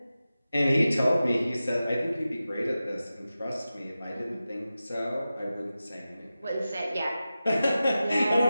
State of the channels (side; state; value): both; inverted; correlation -0.94